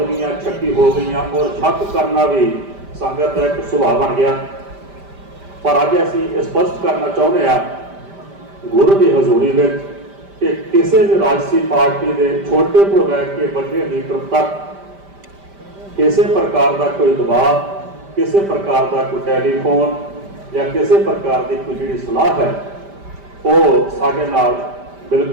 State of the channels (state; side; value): late; left; 5.1 ms